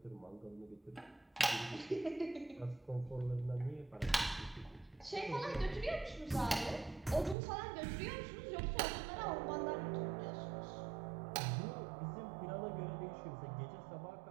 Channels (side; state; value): left; drops out; at 7.4 s